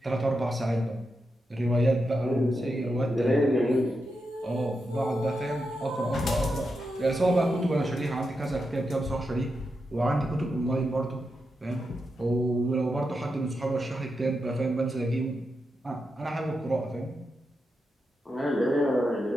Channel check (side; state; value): both; normal; correlation 0.87